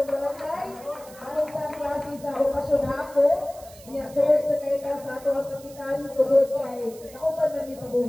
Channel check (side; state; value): right; noise; hiss, 21 dB below the sound